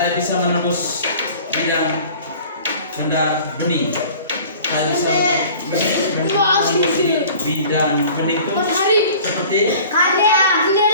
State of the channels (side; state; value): both; inverted; correlation -0.45